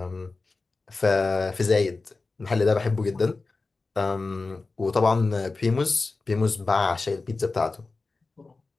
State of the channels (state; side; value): quieter; right; 3.7 dB